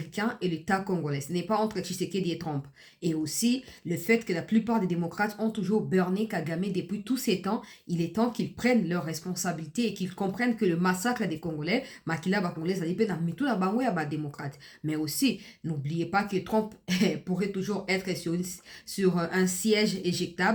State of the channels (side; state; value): both; identical; correlation 1.00